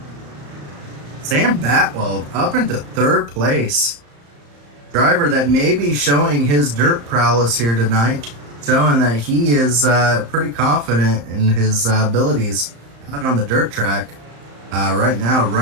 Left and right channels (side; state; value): left; late; 35 ms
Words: Sam Batwell up into 3rd place. Driver that may be showing his dirt prowess here tonight, showing that he is pretty confident in his abilities out on the dirt track. Right now